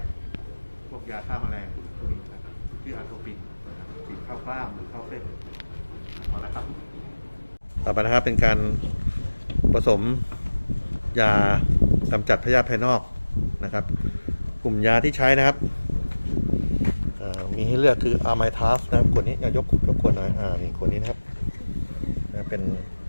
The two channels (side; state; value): both; inverted; correlation -1.00